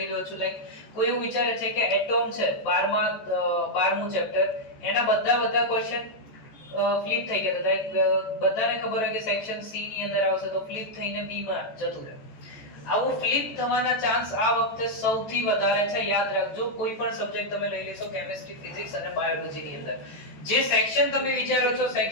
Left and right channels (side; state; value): right; late; 14 ms